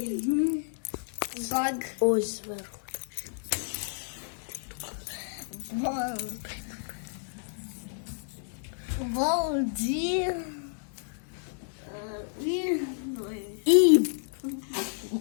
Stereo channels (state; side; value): silent; right; digital silence